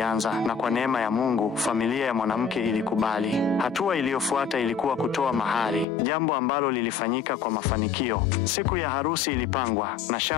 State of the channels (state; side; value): drops out; right; at 5.9 s